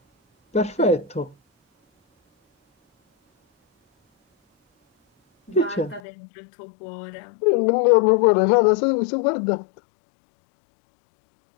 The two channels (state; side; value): drops out; right; at 6.0 s